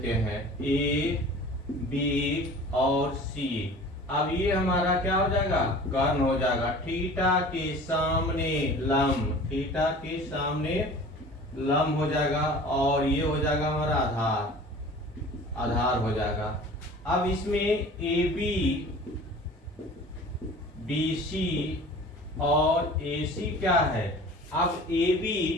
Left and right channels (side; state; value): both; normal; correlation 0.43